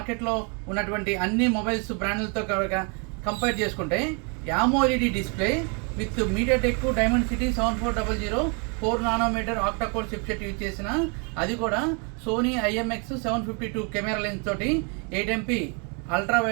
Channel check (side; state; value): left; quieter; 35.8 dB